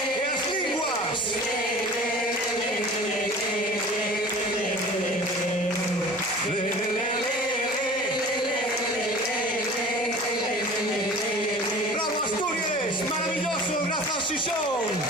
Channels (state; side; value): noise; right; hum, 28 dB below the sound